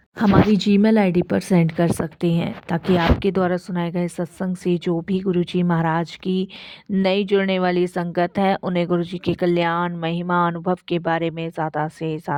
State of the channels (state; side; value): identical; both; correlation 1.00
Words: हमारी जीमेल आईडी पर सेंड कर सकते हैं, ताकि आपके द्वारा सुनाए गए सत्संग से जो भी गुरुजी महाराज की नई जुड़ने वाली संगत है उन्हें गुरुजी के कल्याण, महिमा, अनुभव के बारे में ज़्यादा से